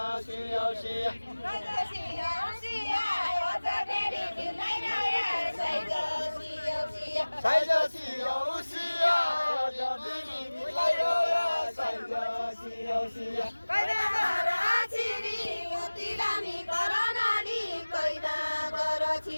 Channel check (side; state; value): both; inverted; correlation -1.00